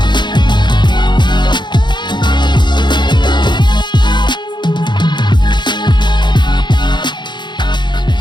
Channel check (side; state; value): right; late; 0.22 ms